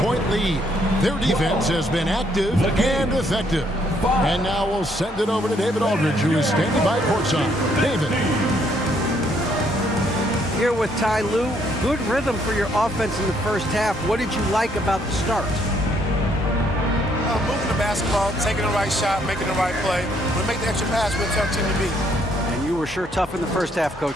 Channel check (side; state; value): both; normal; correlation 0.69